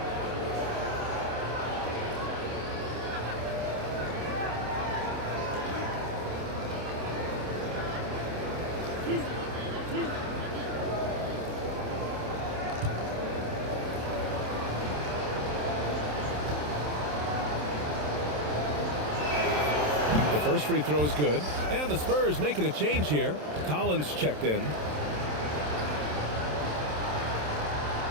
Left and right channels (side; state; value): left; late; 27 ms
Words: The first free throw is good. And the Spurs making a change here. Collins checked in.